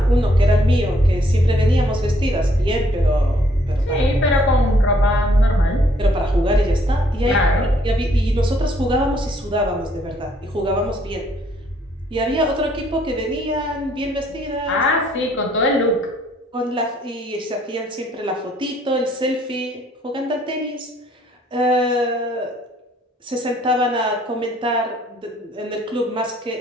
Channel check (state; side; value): normal; both; correlation 0.65